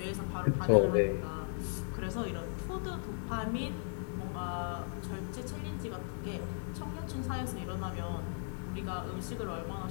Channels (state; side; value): silent; right; digital silence